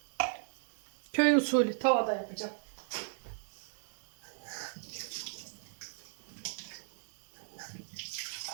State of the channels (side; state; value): left; silent; digital silence